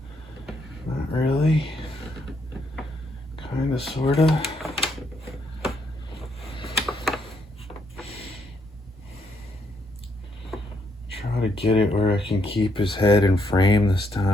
Kinda, sorta. Try to get it where I can keep his head in frame this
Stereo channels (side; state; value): both; normal; correlation 0.75